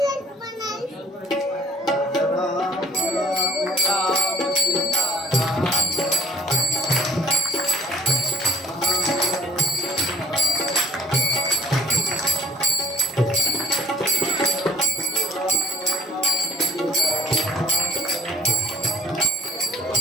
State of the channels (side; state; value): both; normal; correlation 0.51